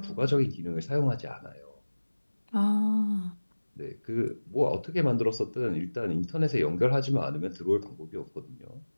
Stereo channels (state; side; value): inverted; both; correlation -1.00